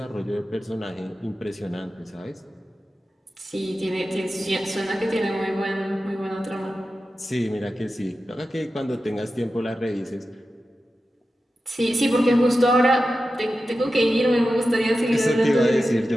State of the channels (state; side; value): normal; both; correlation 0.92